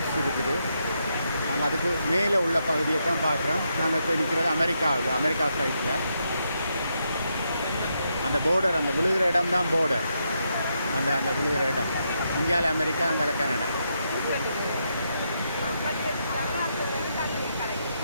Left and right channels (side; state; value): both; inverted; correlation -0.81